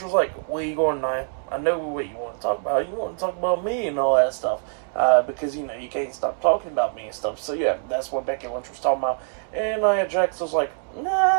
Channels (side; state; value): left; silent; digital silence